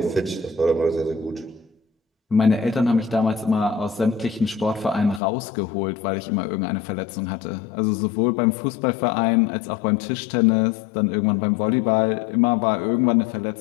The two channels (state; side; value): drops out; right; at 5.2 s